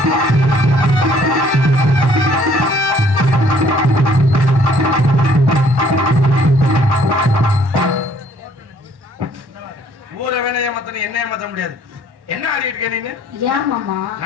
ஊரை வேணா ஏமாத்த என்ன ஏமாத்த முடியாது. என்ன ஆடிட்டு இருக்க நீங்க?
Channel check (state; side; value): late; left; 1.1 ms